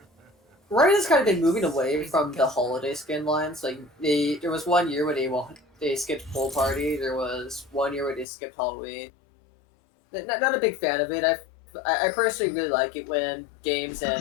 Riot has kind of been moving away from the holiday skin lines. Like there was one year where they skipped Pool Party. There was one year where they skipped Halloween. Not a big fan of it. I personally really like it when games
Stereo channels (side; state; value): right; drops out; at 8.2 s